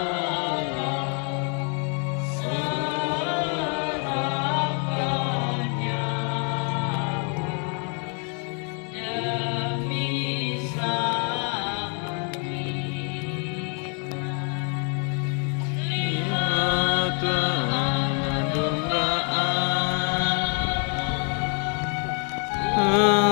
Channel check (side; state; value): right; quieter; 39.0 dB